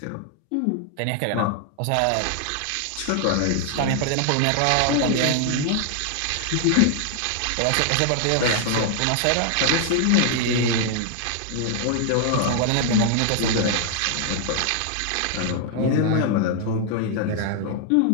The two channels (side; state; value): both; different; correlation 0.00